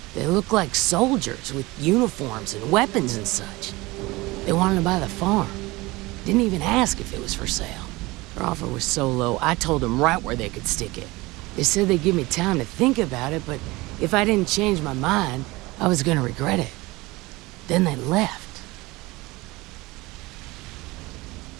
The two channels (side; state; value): left; quieter; 21.7 dB